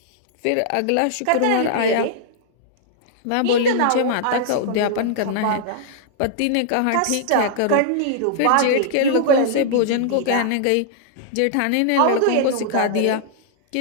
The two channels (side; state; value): both; different; correlation -0.01